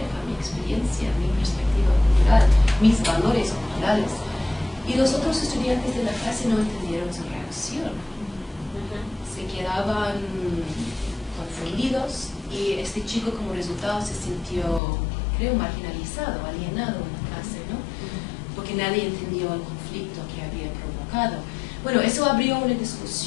mi experiencia, mi perspectiva cultural, mis valores culturales. Y los otros estudiantes de la clase no entendieron su reacción. Se quedaban confundidos y este chico como resultado se sintió, creo, marginalizado, alienado en la clase, ¿no? Porque nadie entendió el conflicto que había provocado. Bueno, eso abrió una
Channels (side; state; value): right; drops out; at 14.8 s